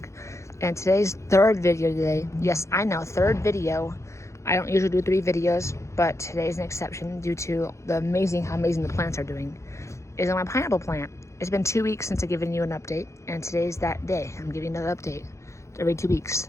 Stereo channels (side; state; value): right; late; 0.14 ms